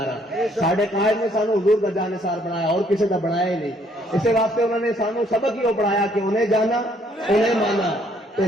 ہیں۔ ساڈے قائد نے سانو حضور کا جانثار بنایا اور کسی کا بنایا ہی نہیں۔ اسی واسطے انہوں نے سانو سبق ہی وہ پڑھایا کہ انہیں جانا انہیں مانا تو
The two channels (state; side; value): normal; both; correlation 0.66